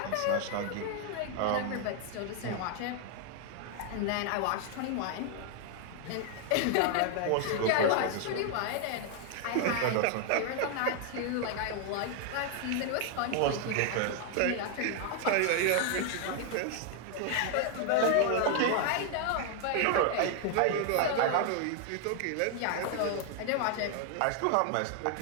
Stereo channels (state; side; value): different; both; correlation 0.00